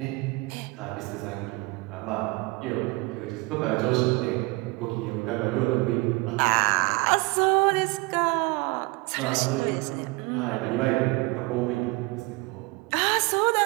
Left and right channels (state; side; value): quieter; left; 24.5 dB